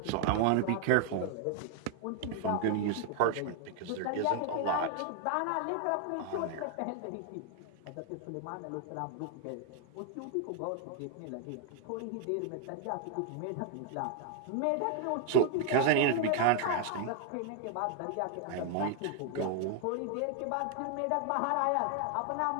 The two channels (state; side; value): different; both; correlation 0.00